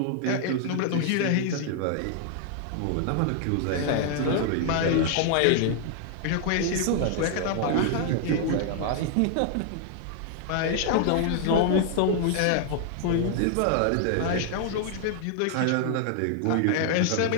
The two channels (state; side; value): different; both; correlation 0.00